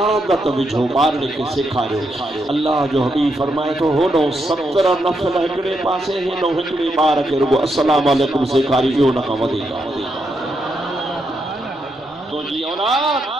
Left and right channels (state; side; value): normal; both; correlation 0.81